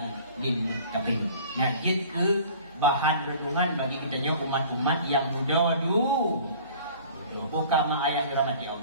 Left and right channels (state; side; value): inverted; both; correlation -0.47